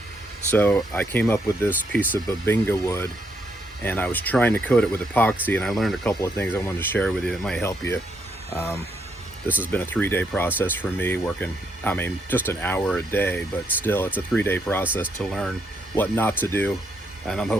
so I came up with this piece of babinga wood, and I was trying to coat it with epoxy, and I learned a couple of things I wanted to share with you that might help you. This has been a 3-day process for me, working, just an hour a day, but still it's a 3-day process to learn what not to do, and I'm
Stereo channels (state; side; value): normal; both; correlation 0.75